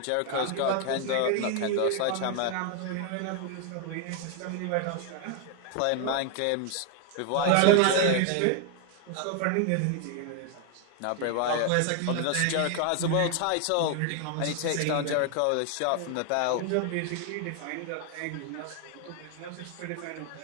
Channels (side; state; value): both; different; correlation 0.00